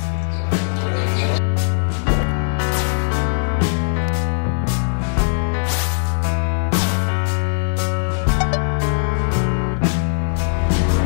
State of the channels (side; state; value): right; silent; 59 dB below the other